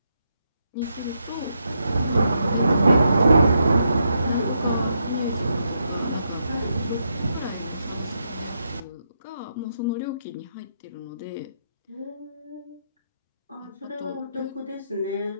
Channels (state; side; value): inverted; both; correlation -0.81